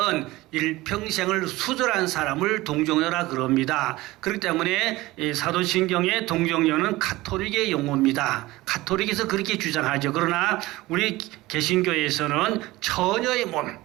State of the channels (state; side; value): quieter; left; 19.1 dB